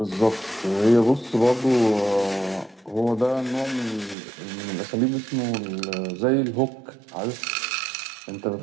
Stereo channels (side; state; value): left; drops out; at 4.2 s